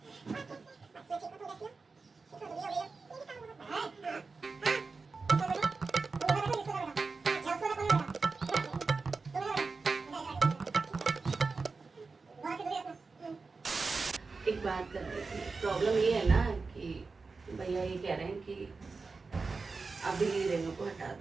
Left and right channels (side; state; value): left; quieter; 4.3 dB